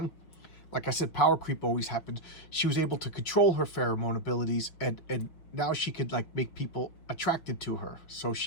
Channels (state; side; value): late; right; 6.0 ms